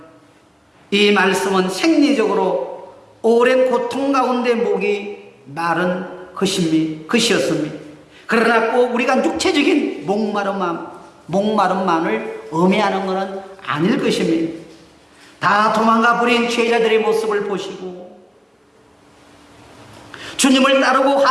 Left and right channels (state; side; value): identical; both; correlation 1.00